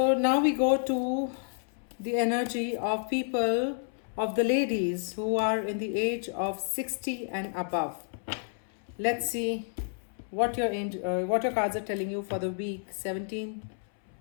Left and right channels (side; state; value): right; silent; 58 dB below the other